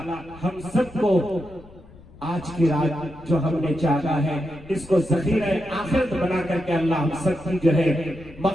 हम सबको आज की रात जो हमने चाहा है इसको ज़ख़ीरा आखिरत बना करके अल्लाह हम सबकी जो है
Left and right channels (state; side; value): noise; left; rumble, 23 dB below the sound